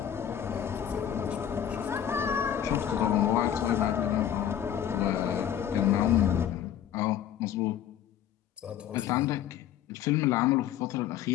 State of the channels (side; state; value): right; quieter; 10.1 dB